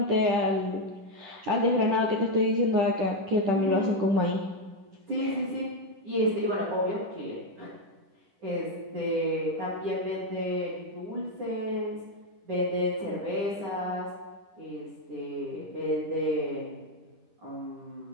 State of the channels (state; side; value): late; left; 10 ms